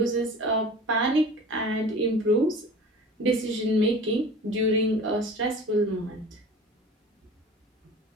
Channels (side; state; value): both; normal; correlation 0.39